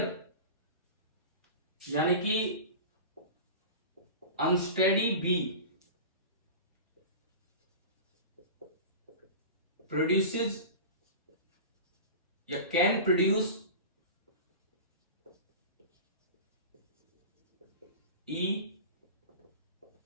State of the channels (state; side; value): inverted; both; correlation -0.32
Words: यानी कि अनस्टेडी बी प्रोड्यूसेस या can produce